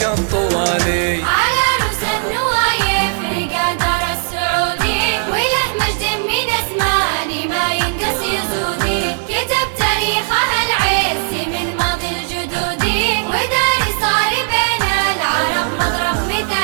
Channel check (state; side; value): silent; left; digital silence